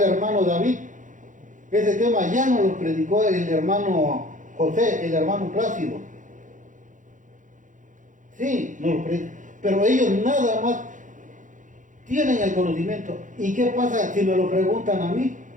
hermano David. Ese tema ya no los predicó el hermano José, el hermano Plácido. Sí, no los predicó, pero ellos nada más tienen el conocimiento. ¿Y qué pasa si me lo preguntan a mí?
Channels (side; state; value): left; late; 0.37 ms